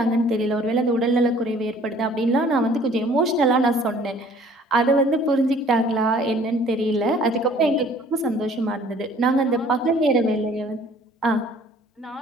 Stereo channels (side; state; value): both; normal; correlation 0.54